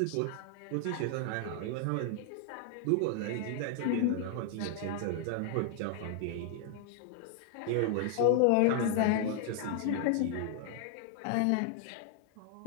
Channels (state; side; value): different; both; correlation -0.01